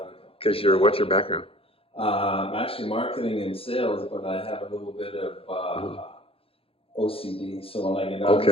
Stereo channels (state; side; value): late; right; 0.27 ms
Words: Because what's your background? I'm actually marketing and sales, but I have a little bit of OCD. So when I get out